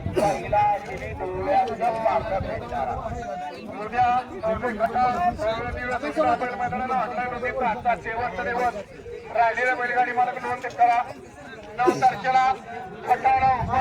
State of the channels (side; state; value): both; identical; correlation 1.00